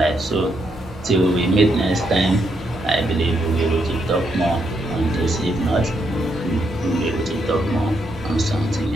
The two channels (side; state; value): both; normal; correlation 0.78